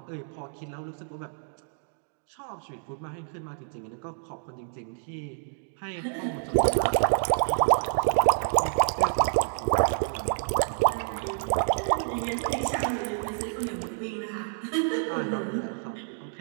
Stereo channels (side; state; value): left; silent; 59 dB below the other